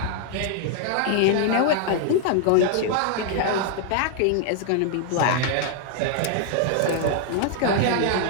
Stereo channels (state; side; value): different; both; correlation 0.00